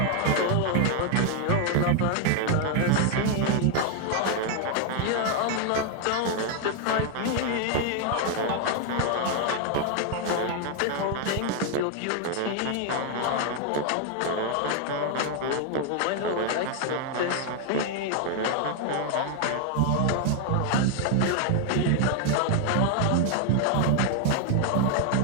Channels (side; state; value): both; different; correlation 0.00